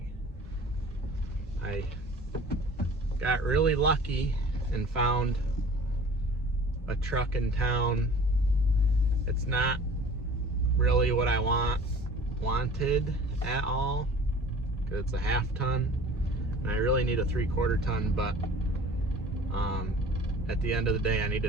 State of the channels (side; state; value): both; normal; correlation 0.45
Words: I got really lucky and found a truck in town. It's not really what I wanted at all, because it's a 1/2 ton and I really need a 3/4 ton, but at the end of the day I